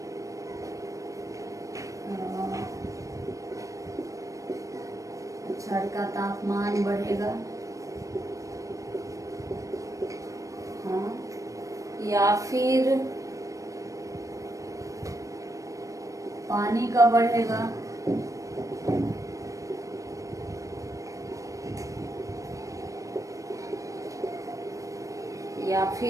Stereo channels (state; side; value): late; left; 0.16 ms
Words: छड़ का तापमान बढ़ेगा, हाँ, या फिर पानी का बढ़ेगा, या